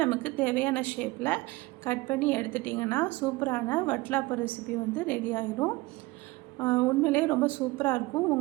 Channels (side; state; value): left; quieter; 21.3 dB